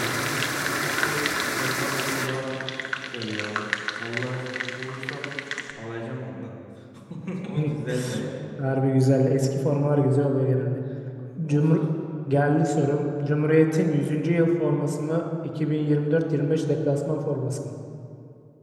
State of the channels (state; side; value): identical; both; correlation 1.00